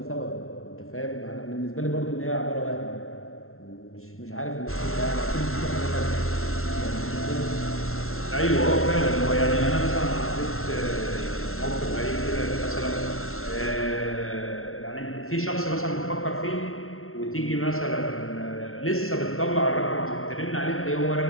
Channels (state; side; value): late; right; 0.62 ms